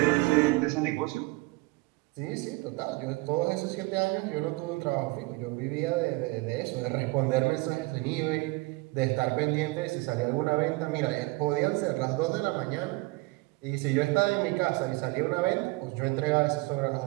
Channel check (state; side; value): quieter; left; 23.5 dB